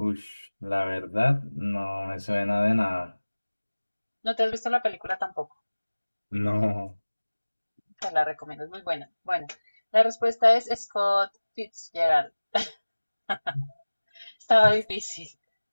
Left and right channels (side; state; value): both; inverted; correlation -1.00